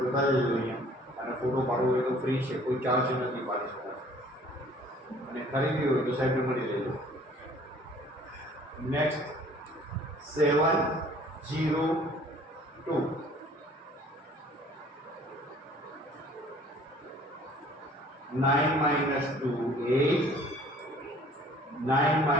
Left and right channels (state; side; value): normal; both; correlation 0.53